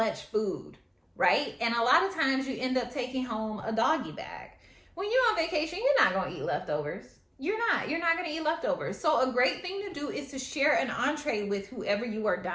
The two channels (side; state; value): both; identical; correlation 1.00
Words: food, right? And a lot of times you end up taking home a doggy bag. When you're on vacation, you're not going to eat leftovers. You're not going to eat leftovers. So a great thing to do is to share an entree with whoever you are